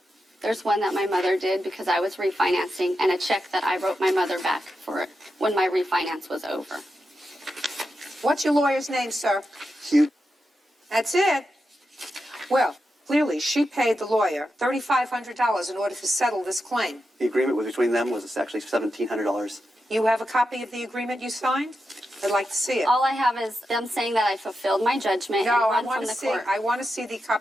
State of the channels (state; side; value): normal; both; correlation 0.88